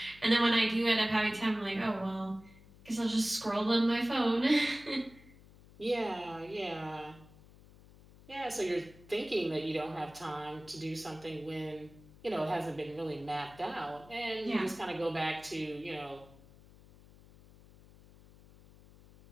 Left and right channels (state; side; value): noise; left; hum, 23 dB below the sound